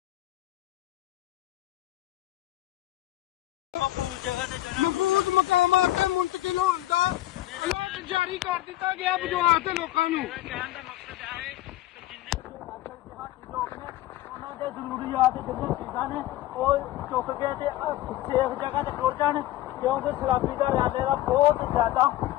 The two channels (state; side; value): quieter; right; 15.3 dB